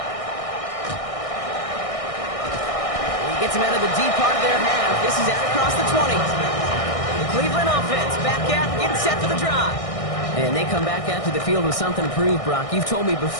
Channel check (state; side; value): late; right; 1.6 ms